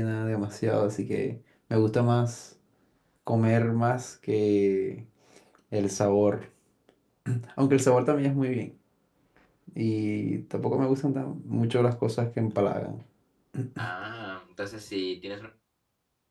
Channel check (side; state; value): both; identical; correlation 1.00